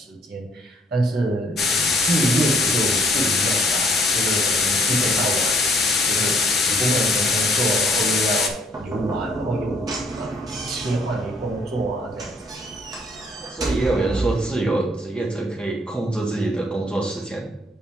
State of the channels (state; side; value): normal; both; correlation 0.63